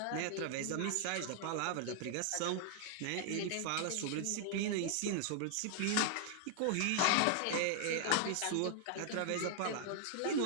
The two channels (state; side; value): different; both; correlation 0.00